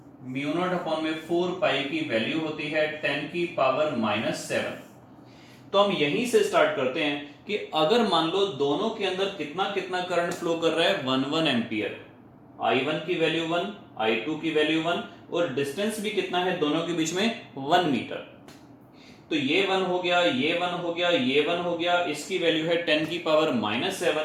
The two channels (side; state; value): both; identical; correlation 1.00